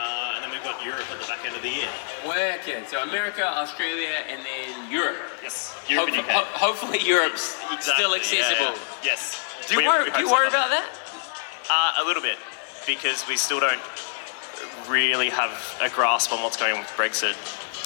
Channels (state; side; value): silent; right; digital silence